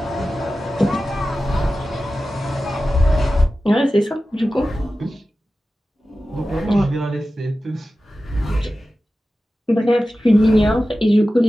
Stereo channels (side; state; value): both; normal; correlation 0.94